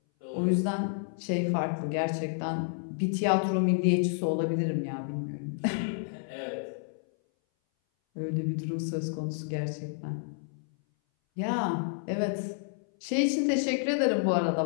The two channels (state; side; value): silent; right; 58 dB below the other